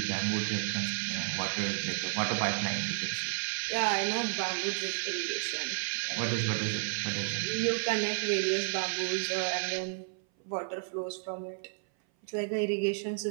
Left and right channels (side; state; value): left; silent; 56 dB below the other